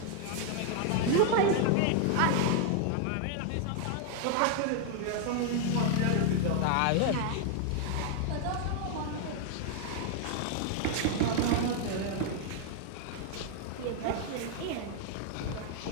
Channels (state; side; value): different; both; correlation 0.00